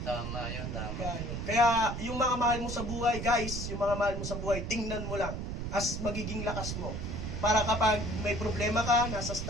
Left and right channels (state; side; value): noise; right; rumble, 4 dB below the sound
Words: Tama yun, tama. Kaya yung mga mahal mo sa buhay, guys, yung mga mahal mo sa buhay, tingnan mo lang as magiging lakas mo. Para kapag may problema ka, nasa